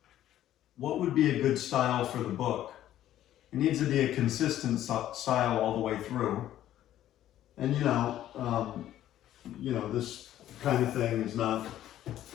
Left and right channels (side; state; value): right; quieter; 12.5 dB